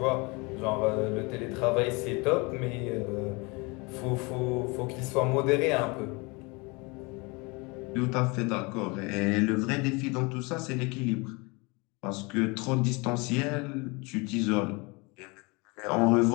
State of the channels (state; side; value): quieter; right; 27.6 dB